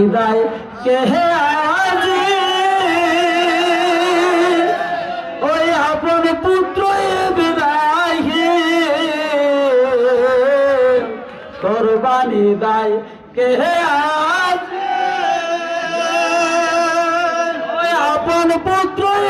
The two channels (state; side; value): identical; both; correlation 1.00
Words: দেয় কে আজি ওই আপন পুত্র বিদায় কোরবানি দেয় কে আজি ওই আপন পুত্র